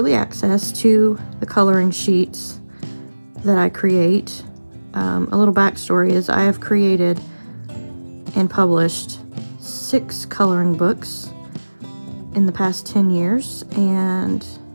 access to the coloring sheets that I create. A little backstory is I have created and published 6 coloring books in the past 10 years, and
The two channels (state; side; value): inverted; both; correlation -1.00